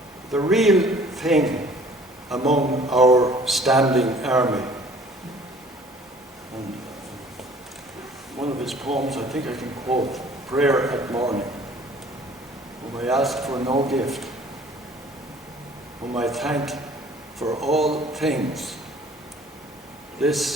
the real thing among our standing army. And one of his poems, I think I can quote, Prayer at Morning, whom I ask for no gift, whom I thank for all things.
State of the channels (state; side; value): normal; both; correlation 0.53